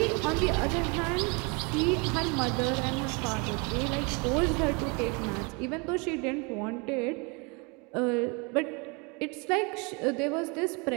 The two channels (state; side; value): quieter; left; 30.7 dB